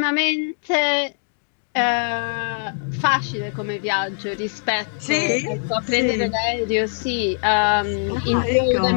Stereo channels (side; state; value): right; silent; digital silence